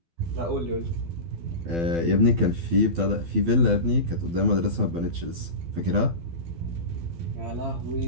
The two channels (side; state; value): left; late; 12 ms